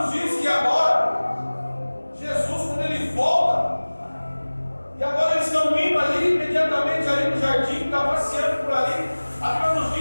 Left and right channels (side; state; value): both; inverted; correlation -1.00